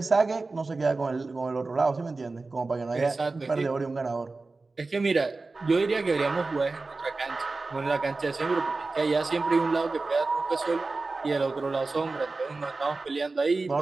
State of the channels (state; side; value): quieter; left; 3.6 dB